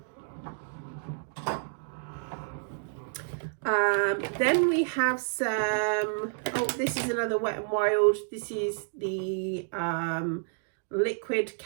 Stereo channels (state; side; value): silent; left; digital silence